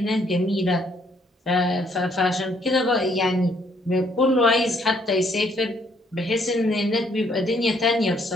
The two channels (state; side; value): normal; both; correlation 0.68